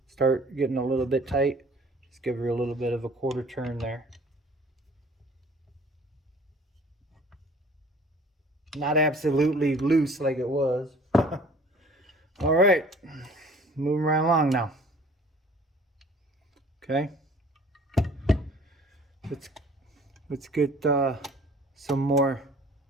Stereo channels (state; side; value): normal; both; correlation 0.51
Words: start getting a little bit tight, just give her a little bit of a quarter turn there. Not absolutely loose like it was. All right, moving right along now. Okay, let's get some more